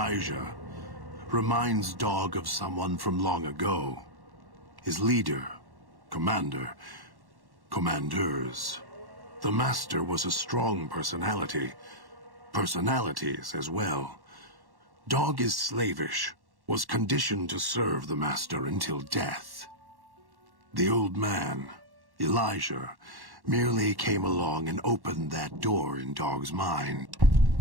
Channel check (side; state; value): left; late; 1.1 ms